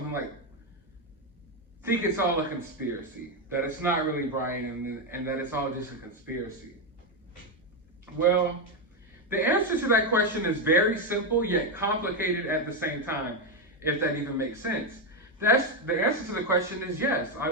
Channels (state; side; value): normal; both; correlation 0.07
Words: like, think it's all a conspiracy, that it's not really Brian and that it's all just a conspiracy? Well, the answer to that question is very simple yet complicated at the same time, if that even makes sense. The answer to the question is yes, I